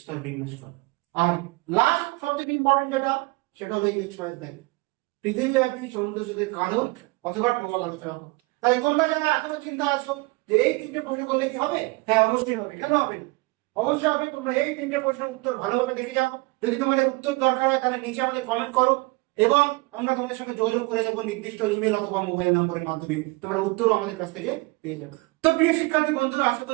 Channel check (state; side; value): quieter; left; 25.3 dB